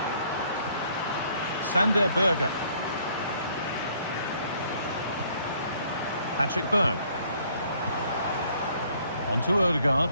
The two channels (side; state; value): both; inverted; correlation -0.63